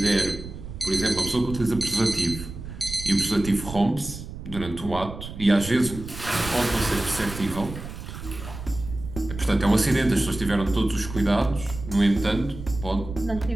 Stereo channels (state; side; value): noise; right; rumble, 11 dB below the sound